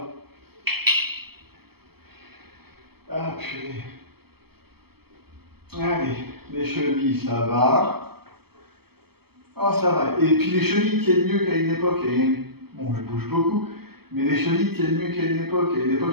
Ah, purée. Allez, les chevilles, ça va. Oh, ça va. Et puis les chevilles tiennent mieux qu'à une époque. Bon, je bouge beaucoup, mais les chevilles tiennent mieux qu'à une époque. À une époque,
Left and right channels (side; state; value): left; late; 0.96 ms